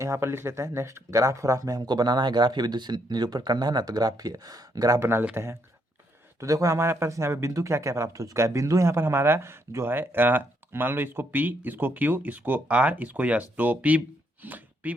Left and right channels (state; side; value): normal; both; correlation 0.75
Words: यहाँ पर लिख लेते हैं। नेक्स्ट ग्राफ में हमको बनाना है, ग्राफ बिंदु से निरूपण करना है ना, तो ग्राफ बना लेते हैं। तो देखो हमारे पास यहाँ पे बिंदु क्या क्या प्राप्त हो चुका है। बिंदु यहाँ पर हमारा जो है मान लो इसको P, इसको Q, इसको R, इसको S। तो P